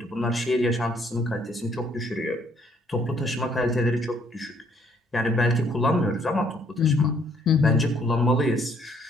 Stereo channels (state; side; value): normal; both; correlation 0.65